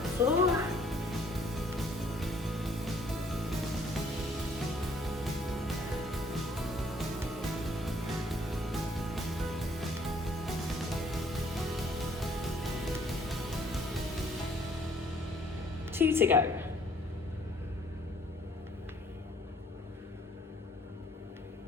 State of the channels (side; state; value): both; normal; correlation 0.62